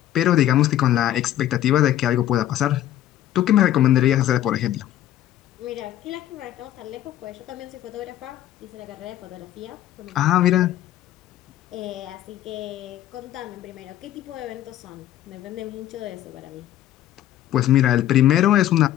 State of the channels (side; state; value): right; quieter; 12.8 dB